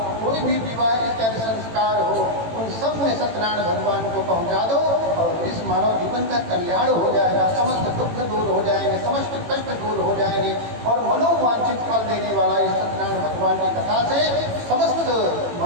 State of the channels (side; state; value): left; late; 18 ms